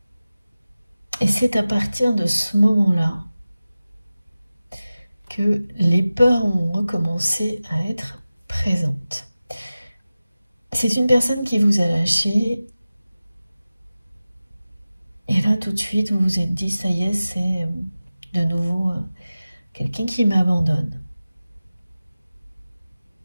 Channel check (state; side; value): inverted; both; correlation -0.96